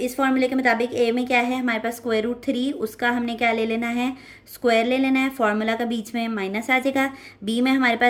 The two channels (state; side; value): identical; both; correlation 1.00